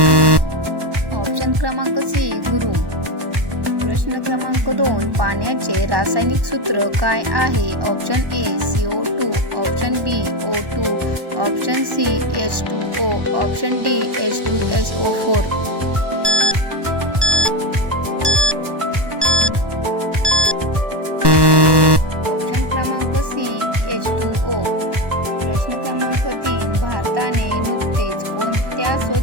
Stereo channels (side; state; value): left; late; 1.1 ms